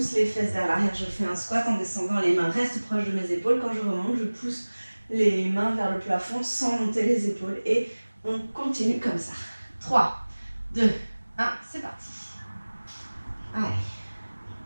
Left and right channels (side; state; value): both; inverted; correlation -1.00